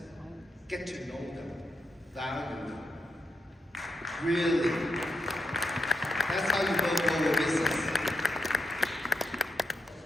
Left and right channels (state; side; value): normal; both; correlation 0.84